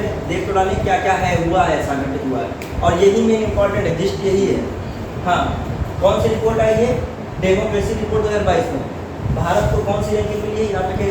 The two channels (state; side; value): identical; both; correlation 1.00